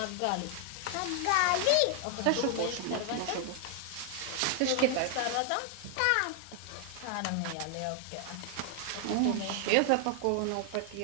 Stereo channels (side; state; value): both; different; correlation 0.00